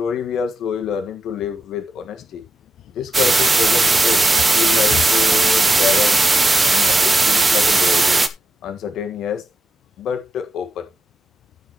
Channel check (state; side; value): normal; both; correlation 0.88